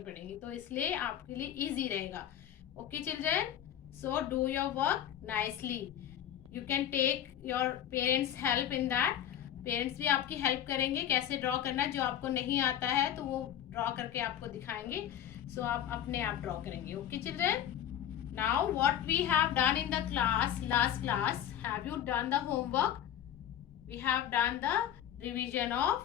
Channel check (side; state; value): right; quieter; 10.7 dB